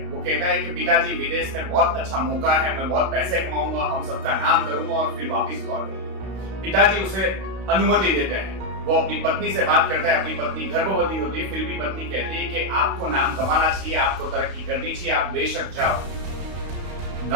वो कहता है कि पिताजी, विदेश में बहुत अच्छा मौका है, मैं बहुत पैसे कमाऊंगा, हम सबका नाम करूंगा और फिर वापस लौटूंगा। पिताजी उसे अनुमति देते हैं। वो अपनी पत्नी से बात करता है। अपनी पत्नी गर्भवती होती है, फिर भी पत्नी कहती है कि आपको नाम कमाना चाहिए, आपको तरक्की करनी चाहिए, आप बेशक जाओ।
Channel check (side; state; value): left; late; 32 ms